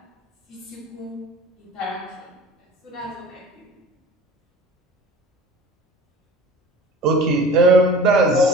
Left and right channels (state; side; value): normal; both; correlation 0.41